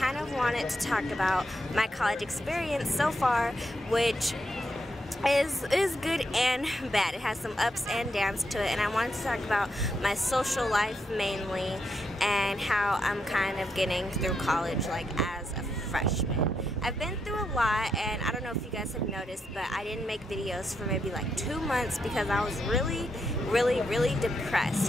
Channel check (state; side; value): normal; both; correlation 0.81